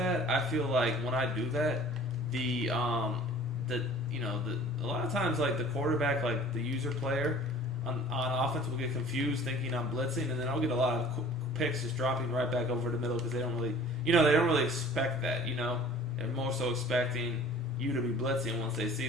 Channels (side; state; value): both; normal; correlation 0.47